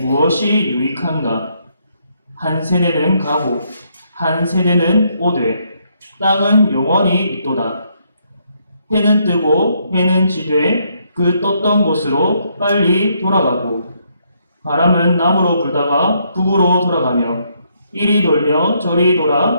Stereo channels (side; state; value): both; inverted; correlation -0.74